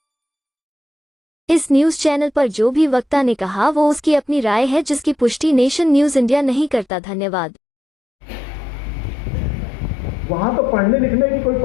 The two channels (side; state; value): right; drops out; at 6.9 s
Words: इस न्यूज चैनल पर जो भी वक्ता ने कहा वो उसकी अपनी राय है, जिसकी पुष्टि नेशन न्यूज इंडिया नहीं करता। धन्यवाद। वहां तो पढ़ने लिखने की कोई